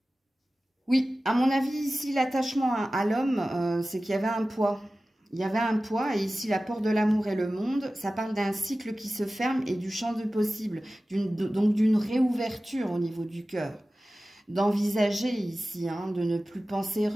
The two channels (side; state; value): both; normal; correlation 0.96